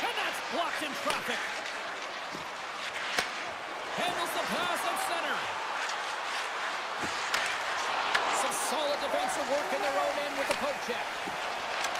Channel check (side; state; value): both; identical; correlation 1.00